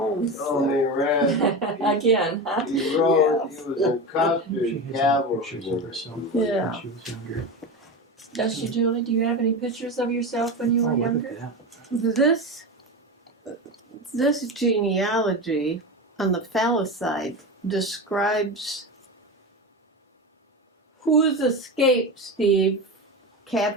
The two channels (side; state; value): both; normal; correlation 0.22